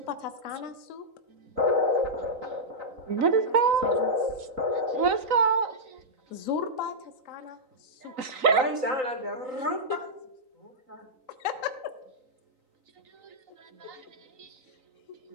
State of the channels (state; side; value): late; left; 3.9 ms